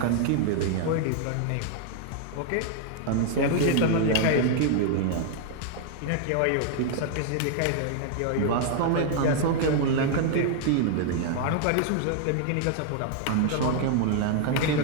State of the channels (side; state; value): both; different; correlation 0.00